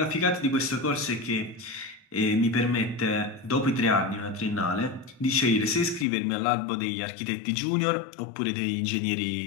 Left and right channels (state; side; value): drops out; right; at 6.1 s